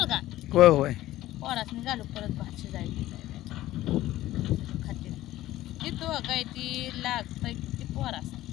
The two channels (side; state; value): right; quieter; 15.3 dB